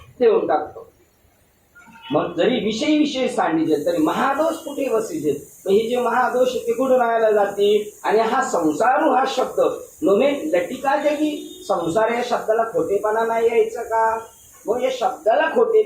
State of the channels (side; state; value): both; identical; correlation 1.00